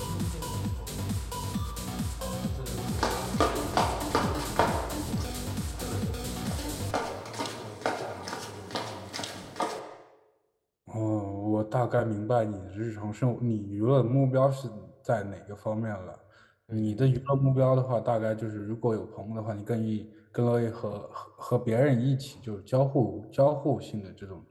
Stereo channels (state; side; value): identical; both; correlation 1.00